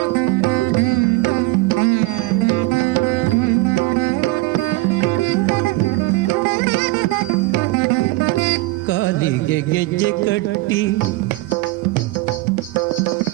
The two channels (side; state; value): left; quieter; 20.6 dB